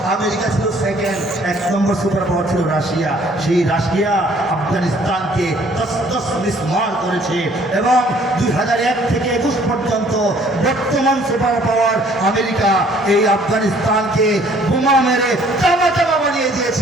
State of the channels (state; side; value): normal; both; correlation 0.59